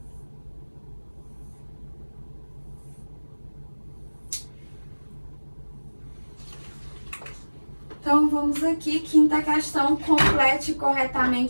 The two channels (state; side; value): inverted; both; correlation -1.00